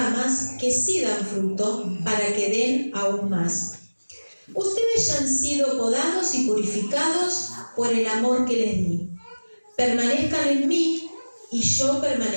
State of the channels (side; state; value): both; inverted; correlation -1.00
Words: que sí dan fruto para que den aún más. Ustedes ya han sido podados y purificados por el amor que les di. Permanezcan en mí y yo